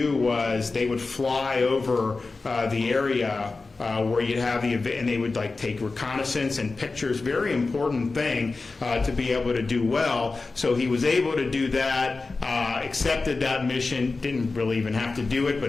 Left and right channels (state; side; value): quieter; right; 3.8 dB